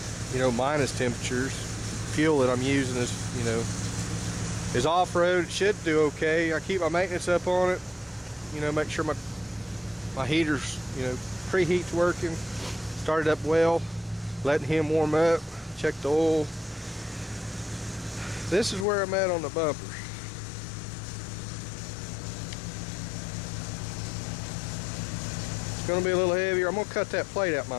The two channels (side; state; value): right; drops out; at 18.9 s